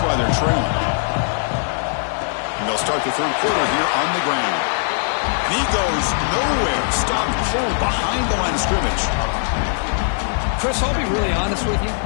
they're trailing. They'll start the 3rd quarter here on the ground. He goes nowhere. Stopped cold behind the line of scrimmage. Chris, I'll be really honest with you.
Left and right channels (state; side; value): silent; right; digital silence